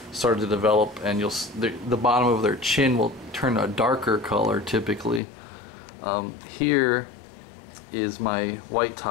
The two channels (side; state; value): right; drops out; at 5.2 s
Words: started to develop, and the bottom of their chin will turn a darker color typically. Here is my white